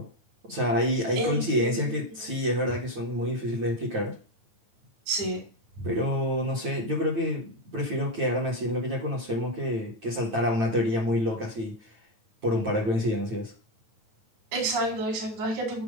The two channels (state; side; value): late; left; 9.1 ms